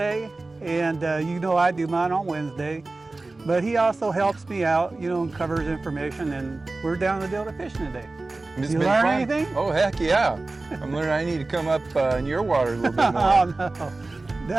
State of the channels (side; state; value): left; quieter; 3.3 dB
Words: and you know I do mine on Wednesday. But he also helps me out, you know, and covers information, and we're down the Delta fishing today. It's You been learn fun. anything? Oh, heck yeah. I'm learning I need to come up in your water a little bit more. Oh